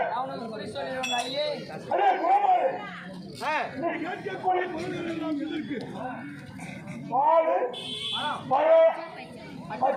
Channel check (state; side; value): identical; both; correlation 1.00